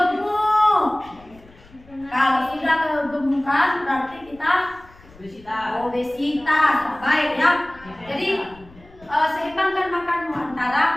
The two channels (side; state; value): left; noise; rumble, 24 dB below the sound